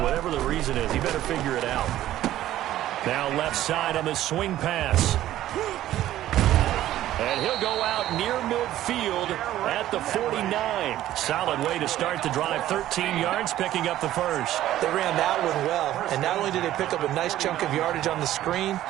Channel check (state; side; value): quieter; left; 13.5 dB